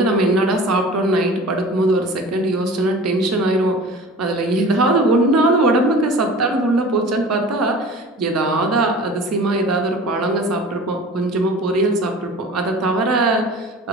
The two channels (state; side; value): normal; both; correlation 0.40